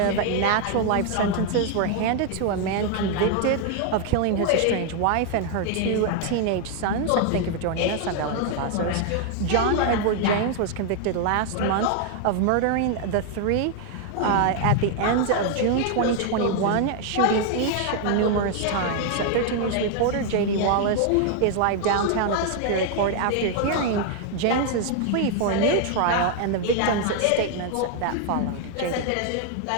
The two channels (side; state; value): both; different; correlation 0.00